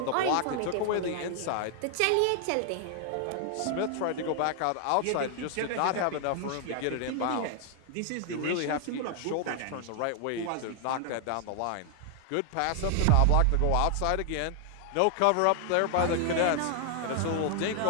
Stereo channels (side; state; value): both; different; correlation 0.00